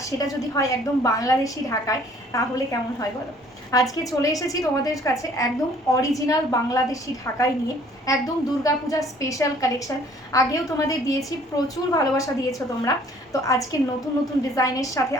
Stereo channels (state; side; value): normal; both; correlation 0.57